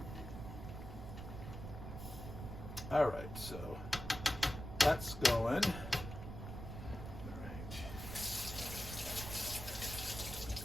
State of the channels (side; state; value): right; noise; rumble, 8 dB below the sound